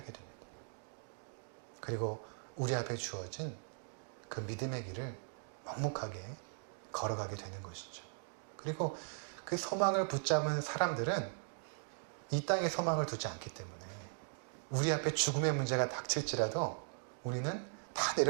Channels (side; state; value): left; silent; digital silence